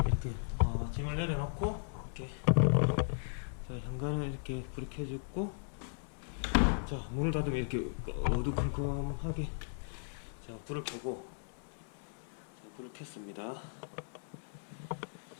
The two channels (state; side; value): silent; right; 53 dB below the other